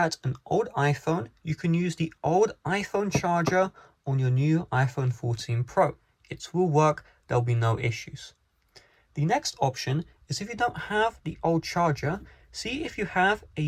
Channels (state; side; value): identical; both; correlation 1.00